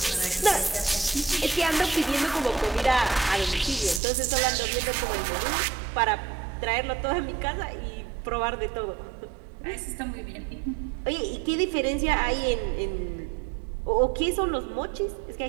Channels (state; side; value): drops out; left; at 4.0 s